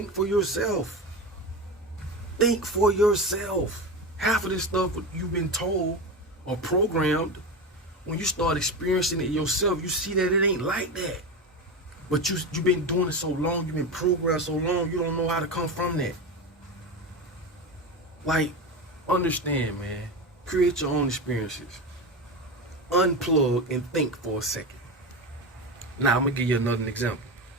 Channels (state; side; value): normal; both; correlation 0.21